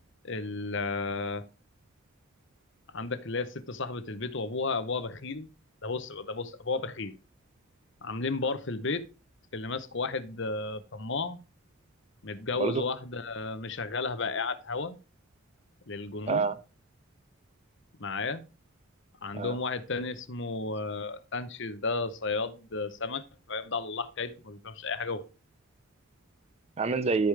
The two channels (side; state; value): both; normal; correlation -0.05